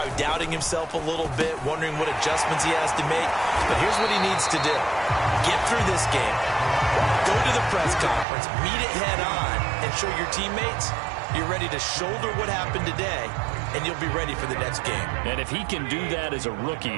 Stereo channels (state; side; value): drops out; left; at 8.2 s